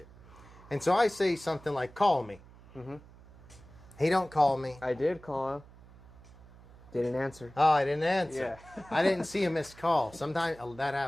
And so I say something like, call me. He don't call me. I did call him. Didn't answer. Oh, I didn't answer. Yeah. I didn't see a missed call. Sometimes that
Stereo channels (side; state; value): right; noise; hum, 22 dB below the sound